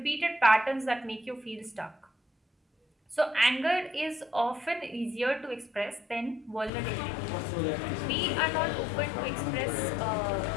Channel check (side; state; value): right; drops out; at 6.7 s